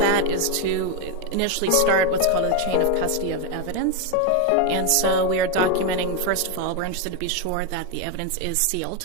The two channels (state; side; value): different; both; correlation 0.02